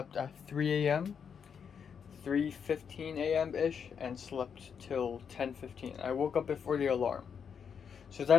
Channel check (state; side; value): quieter; right; 7.0 dB